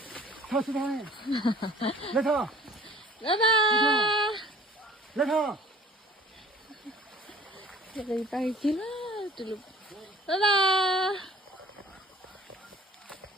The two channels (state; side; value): normal; both; correlation 0.50